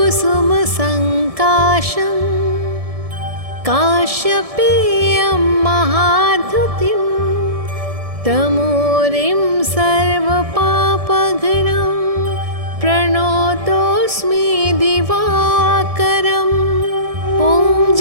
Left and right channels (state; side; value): late; left; 1.7 ms